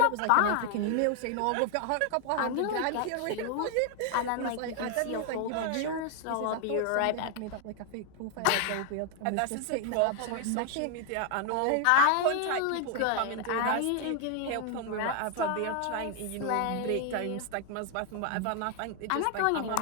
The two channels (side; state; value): both; different; correlation 0.00